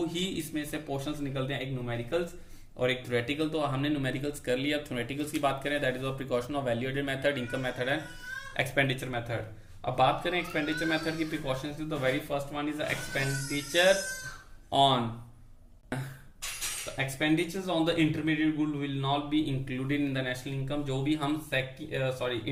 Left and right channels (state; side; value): identical; both; correlation 1.00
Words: ही इसमें से पोर्शंस निकलते हैं, एक न्यूमेरिकल्स और एक थ्योरेटिकल, तो हमने न्यूमेरिकल्स कर लिया। अब थ्योरेटिकल्स की बात करें, that is of precaution of value added method, income method and expenditure method. अब बात करें एक्सपेंडिचर मेथड की प्रिकॉशंस की, तो very first one is expenditure on expenditures on the intermediate good will not be included in the national income। जो भी हम